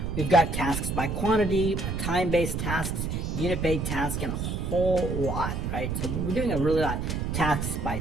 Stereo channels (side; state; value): right; noise; rumble, 2 dB below the sound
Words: We've got tasks by quantity, time-based tasks, unit-based tasks, and a whole lot, right? So we're doing a really lot. Tasks by